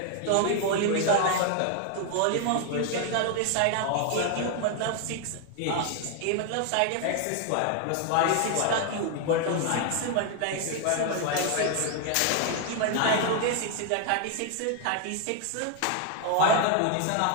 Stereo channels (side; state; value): both; different; correlation 0.00